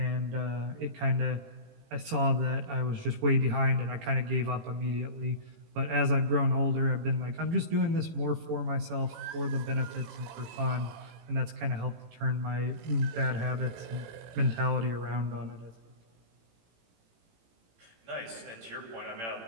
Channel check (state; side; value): late; left; 18 ms